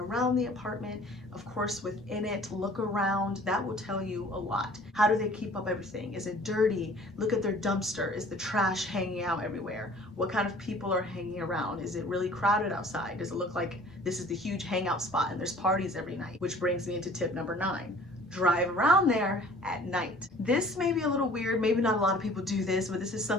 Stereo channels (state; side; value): normal; both; correlation 0.50